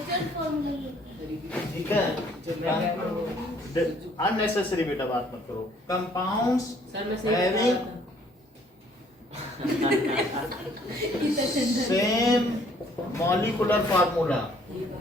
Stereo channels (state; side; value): normal; both; correlation 0.62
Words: फार्मूला? ठीक है, अननेसेसरी बेटा बात मत करो। कंपाउंड्स सर मैं सही हैविंग बता same molecular formula